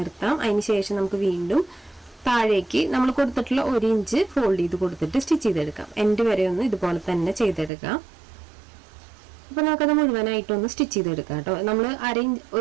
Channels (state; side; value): drops out; left; at 7.7 s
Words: അതിന് ശേഷം നമുക്ക് വീണ്ടും താഴേക്ക് നമ്മൾ കൊടുത്തിട്ടുള്ള 1 ഇഞ്ച് ഫോൾഡ് ചെയ്ത് കൊടുത്തിട്ട് സ്റ്റിച്ച് ചെയ്തെടുക്കാം. എൻഡ് വരെ ഒന്ന് ഇതുപോലെ തന്നെ ചെയ്തെടുക്കാം. അപ്പോൾ നമുക്കത് മുഴുവനായിട്ടൊന്ന് സ്റ്റിച്ച് ചെയ്തെടുക്കാം കേട്ടോ. നമ്മൾ